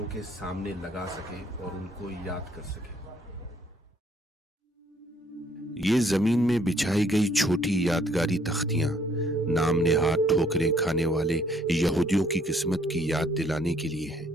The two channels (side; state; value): both; normal; correlation 0.64